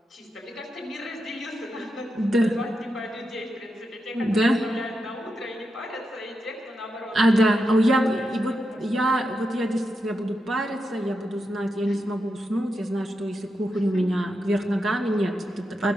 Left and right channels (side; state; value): both; normal; correlation 0.86